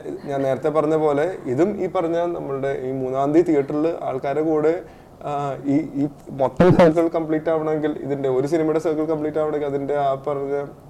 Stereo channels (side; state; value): both; identical; correlation 1.00